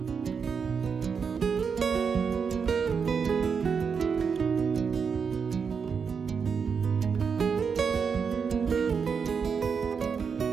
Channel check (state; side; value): quieter; left; 6.1 dB